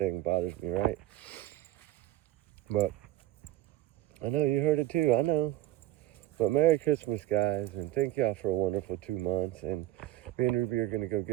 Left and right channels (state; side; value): quieter; left; 15.3 dB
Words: bothers me, right? But I know you heard it too, I know. But Merry Christmas, guys, and thank y'all for a wonderful 2 months. And me and Ruby are gonna go